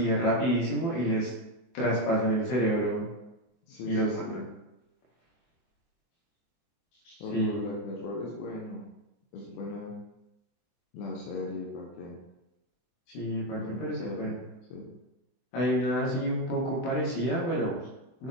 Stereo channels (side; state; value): right; late; 24 ms